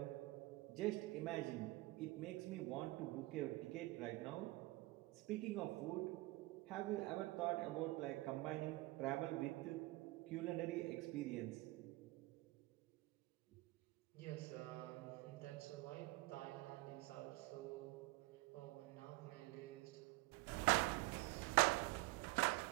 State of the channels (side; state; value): left; quieter; 21.3 dB